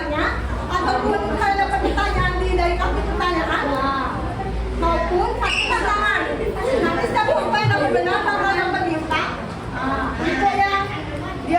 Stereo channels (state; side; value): identical; both; correlation 1.00